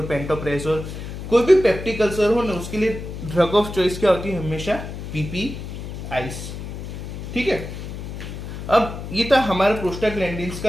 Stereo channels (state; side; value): noise; left; hum, 8 dB below the sound